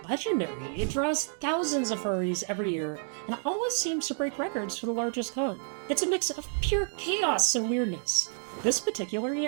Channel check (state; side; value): silent; left; 58 dB below the other